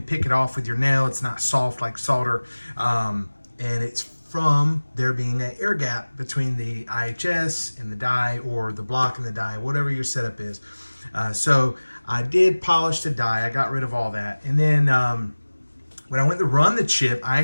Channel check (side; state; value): both; inverted; correlation -1.00